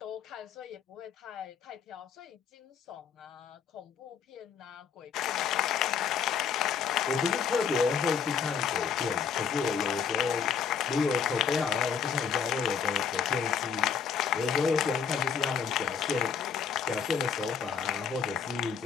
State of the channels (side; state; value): right; quieter; 6.9 dB